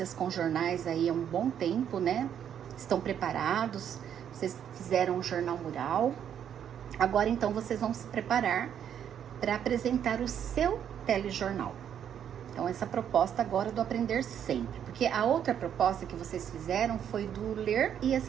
com jornais aí há um bom tempo, né? Estão preparados. Vocês fizeram um jornal mural. Agora então vocês vão se preparar para apresentar o seu telejornal. Então essa proposta agora do aprender sempre, porque a outra proposta que vocês fizeram foi do ler e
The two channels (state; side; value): quieter; left; 9.1 dB